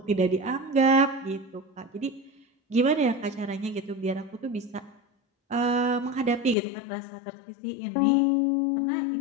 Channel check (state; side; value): drops out; right; at 6.6 s